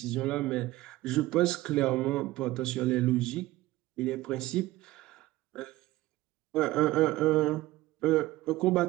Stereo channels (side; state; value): left; quieter; 17.7 dB